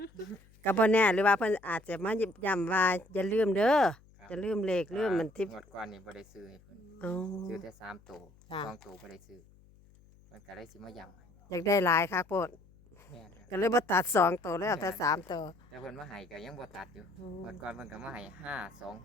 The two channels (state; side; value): noise; left; hum, 27 dB below the sound